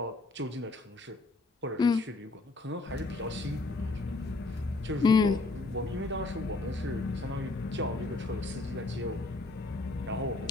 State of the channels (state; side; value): quieter; right; 3.3 dB